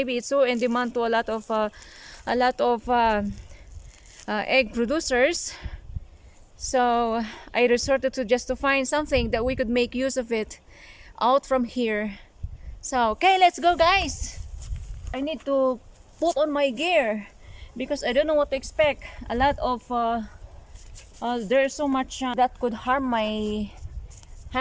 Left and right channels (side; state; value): both; identical; correlation 1.00